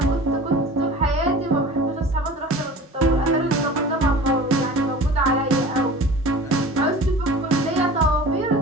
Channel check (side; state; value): both; normal; correlation 0.39